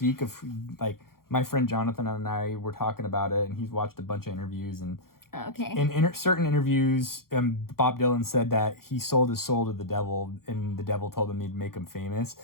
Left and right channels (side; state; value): right; late; 0.93 ms